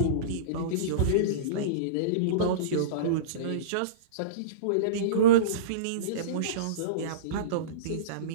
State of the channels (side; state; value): both; different; correlation -0.08